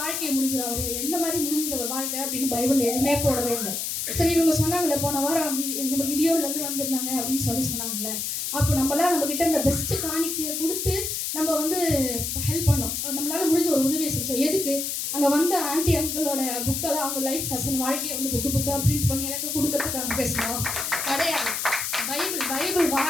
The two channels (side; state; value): left; noise; hiss, 2 dB below the sound